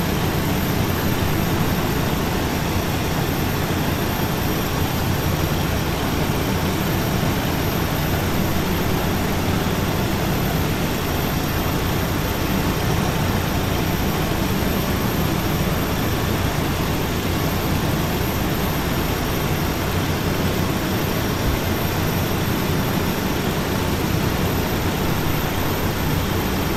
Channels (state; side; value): identical; both; correlation 1.00